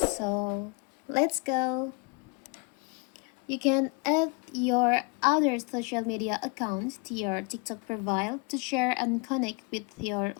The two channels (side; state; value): right; quieter; 31.4 dB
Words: let's go. You can add your other social media accounts to your TikTok profile to share and connect with your